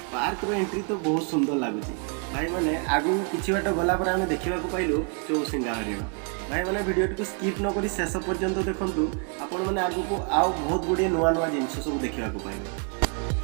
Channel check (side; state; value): left; quieter; 39.8 dB